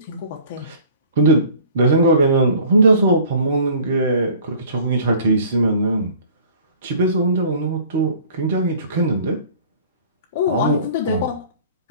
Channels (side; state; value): both; inverted; correlation -0.48